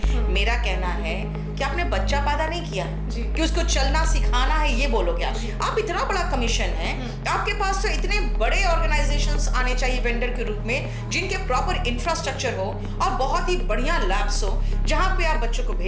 मेरा कहना है कि आपने बच्चा पैदा नहीं किया कि उसको चलना सिखाना है, ये बोलोगे आप इतना बड़ा कमीशन है, आपके पास तो इतने बड़े ऑर्गेनाइजेशंस आने चाहिए वेंडर के रूप में, जिनके प्रॉपर इंफ्रास्ट्रक्चर हो और बहुत ही बढ़िया लैब्स हो, जहाँ पे आप बच्चों को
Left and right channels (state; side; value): identical; both; correlation 1.00